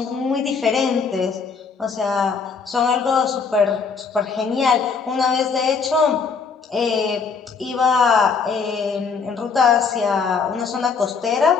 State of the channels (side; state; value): right; quieter; 5.4 dB